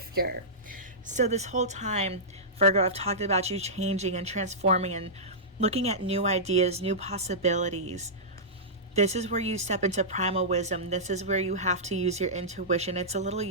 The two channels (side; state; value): both; normal; correlation -0.15